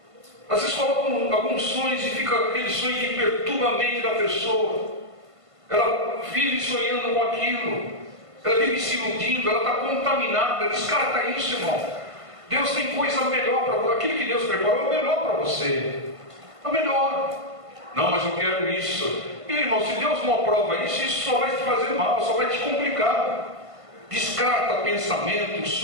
Às vezes colocam alguns sonhos e fica aquele sonho que perturba a mente da pessoa. Ela vive sonhando com aquilo. ela vive se iludindo, ela está contaminada. Descarta isso, irmão. Deus tem coisa melhor para você. Aquilo que Deus preparou é o melhor para você. É o melhor. Não, mas eu quero isso. E, irmão, se Deus não aprova isso, isso só vai te fazer mal, só vai te complicar. Descarta pensamentos,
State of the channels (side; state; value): left; late; 1.5 ms